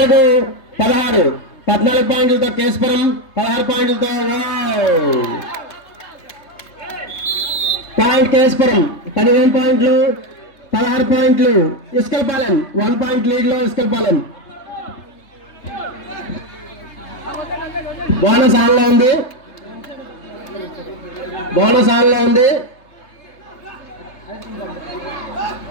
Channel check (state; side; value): late; right; 3.3 ms